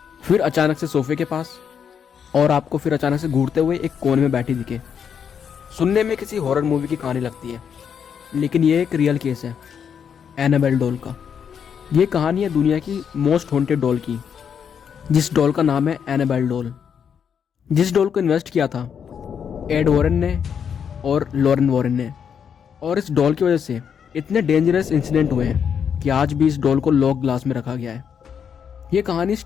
फिर अचानक से सोफे के पास, और आपको फिर अचानक से घूरते हुए एक कोने में बैठी दिखे। सुनने में किसी हॉरर मूवी की कहानी लगती है, लेकिन ये एक रियल केस है एनाबेल डॉल का। ये कहानी है दुनिया की मोस्ट हॉन्टेड डॉल की, जिस डॉल का नाम है एनाबेल डॉल। जिस डॉल को इन्वेस्ट किया था एड वॉरेन ने और लॉरेन वॉरेन ने, और इस डॉल की वजह से इतने डेंजरस इंसिडेंट हुए हैं कि आज भी इस डॉल को लॉक ग्लास में रखा गया है। ये कहानी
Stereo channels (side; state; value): right; quieter; 7.5 dB